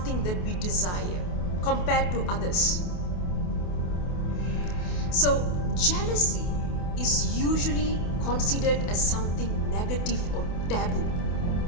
that we desire compared to others. So jealousy is usually considered as something negative or taboo,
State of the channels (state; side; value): late; right; 28 ms